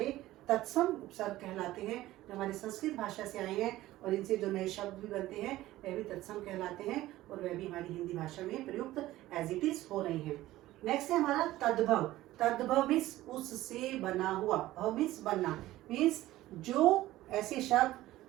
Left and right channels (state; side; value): quieter; left; 16.0 dB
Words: तत्सम उपसर्ग कहलाते हैं, जो हमारी संस्कृत भाषा से आए हैं, और इनसे जो नए शब्द भी बनते हैं वह भी तत्सम कहलाते हैं, और वह भी हमारी हिंदी भाषा में प्रयुक्त एज इट इज हो रहे हैं। नेक्स्ट है हमारा तद्भव। तद्भव मीन्स उससे बना हुआ, भव मीन्स बनना, मीन्स जो ऐसे शब्द